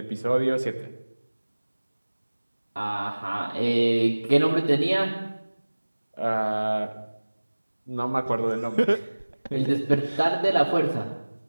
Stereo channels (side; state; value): both; inverted; correlation -1.00